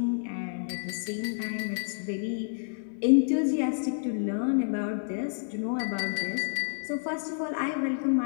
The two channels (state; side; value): silent; right; 58 dB below the other